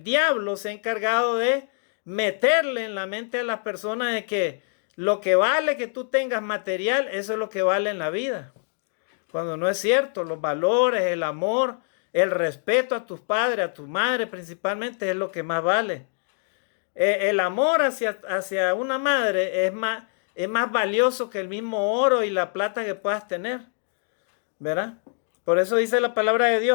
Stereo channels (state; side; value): silent; right; 62 dB below the other